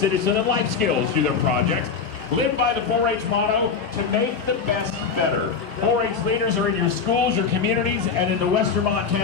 and life skills through their projects. Live by the 4-H motto, to make the best better. 4-H leaders are in your schools, your communities, and in the Western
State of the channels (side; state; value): right; quieter; 5.8 dB